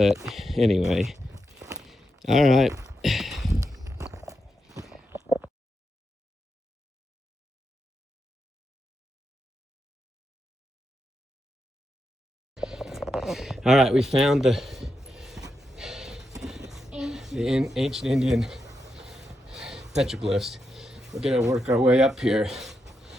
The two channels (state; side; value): normal; both; correlation 0.85